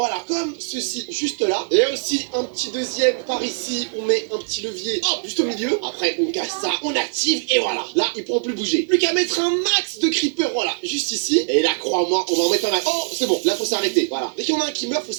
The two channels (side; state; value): left; silent; digital silence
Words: comme ceci, juste là. Et aussi un petit deuxième par ici, on met un petit levier, hop, juste au milieu. Après, on casse ça, on active et voilà. Là, ils pourront plus bouger. Plus qu'à mettre un max de creeper, voilà, juste ici. Et là, crois-moi, on va en mettre un max. Oh, c'est bon, là, faut s'arrêter. Voilà. Dès qu'il y en a un qui meurt, faut